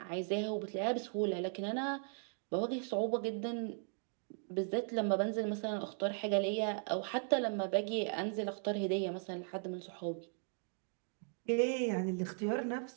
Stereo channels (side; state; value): left; silent; 53 dB below the other